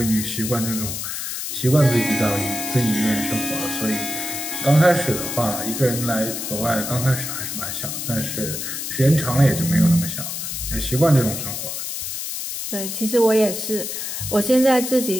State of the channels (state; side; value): noise; left; hiss, 5 dB below the sound